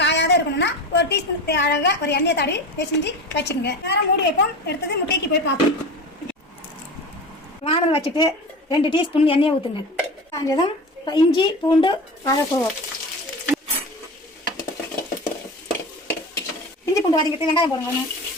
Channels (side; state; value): both; normal; correlation 0.29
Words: காயாத இருக்கணும்னா 1 டீஸ்பூன் அழகாக ஒரு எண்ணெயை தடவி பிசைஞ்சு வச்சுக்கோங்க. நேரம் மூடி வைப்போம். எடுத்தது முட்டைக்கு போய் பார்ப்போம். வானல் வச்சுட்டு 2 டீஸ்பூன் எண்ணெயை ஊற்றுங்க. காஞ்சதும் இஞ்சி பூண்டு வதக்குவோம். இஞ்சி பூண்டு வதங்கிட்டு வெங்காயம் போடுங்க.